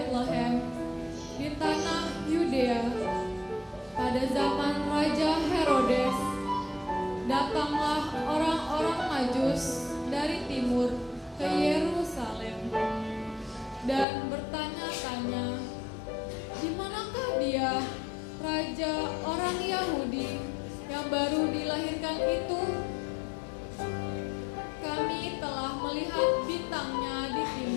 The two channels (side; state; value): right; drops out; at 14.1 s